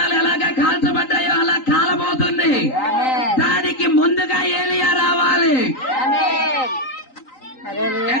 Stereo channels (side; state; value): right; late; 3.9 ms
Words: ఎలాగా కాల్చబడ్డాయో అలా కాలబోతుంది. దానికి ముందుగా ఏలియా రావాలి.